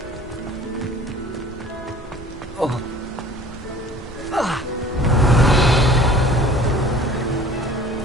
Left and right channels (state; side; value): normal; both; correlation 0.47